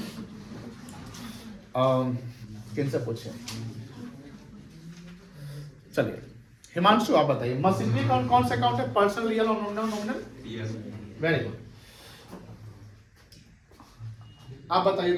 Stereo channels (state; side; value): identical; both; correlation 1.00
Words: हूँ, किनसे पूछे? चलिए हिमांशु आप बताइए, मशीनरी अकाउंट कौन सा अकाउंट है? पर्सनल, रियल और नॉमिनल? Very good. आप बताइए